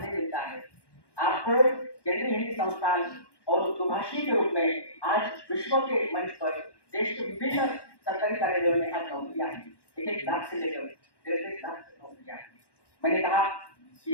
मिलता है। आपको केंद्रीय हिंदी संस्थान और दुभाषी के रूप में आज विश्व के मंच पर देश के विभिन्न सरकारी कार्यालयों में आज नौकरियां हैं। 1 लाख से लेकर 1.5 लाख तक नौकरियां हैं। मैंने कहा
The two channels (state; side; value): late; right; 1.1 ms